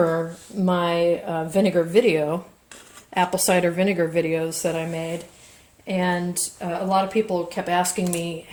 my vinegar video, apple cider vinegar videos that I made. And a lot of people kept asking me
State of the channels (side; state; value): both; identical; correlation 1.00